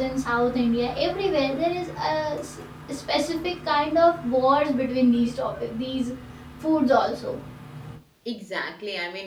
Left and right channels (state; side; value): identical; both; correlation 1.00